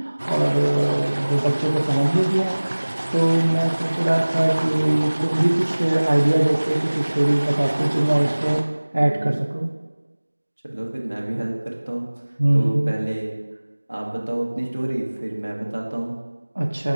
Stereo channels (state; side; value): inverted; both; correlation -1.00